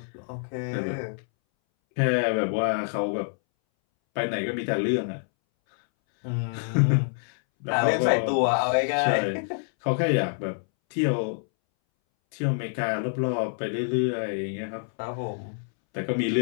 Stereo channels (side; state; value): right; silent; 61 dB below the other